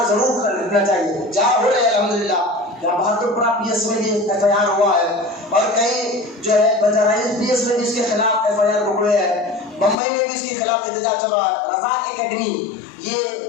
ضرور کرنا چاہیے. جہاں ہو رہے الحمدللہ, جہاں بہادر پورہ PS میں بھی FIR ہوا ہے اور کئی جو ہے بجرائز PS میں بھی اس کے خلاف FIR پکڑے ہیں. بمبئی میں بھی اس کے خلاف احتجاج چل رہا ہے. رفاق اکیڈمی, یہ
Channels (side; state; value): right; drops out; at 10.0 s